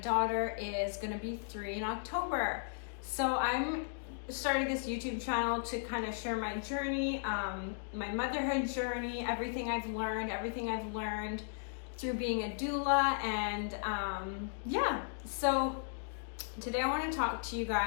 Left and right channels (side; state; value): right; silent; digital silence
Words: is gonna be 3 in October. So I'm starting this YouTube channel to kind of share my journey, my motherhood journey, everything I've learned through being a doula, and so today I want to talk to you